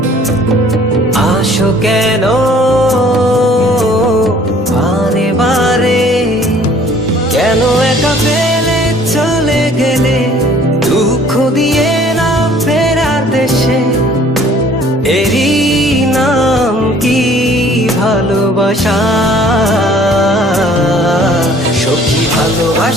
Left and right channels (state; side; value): normal; both; correlation 0.54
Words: আসো কেন বারে বারে, কেন একা ফেলে চলে গেলে দুঃখ দিয়ে না ফেরার দেশে, এরই নাম কি ভালোবাসা? সখী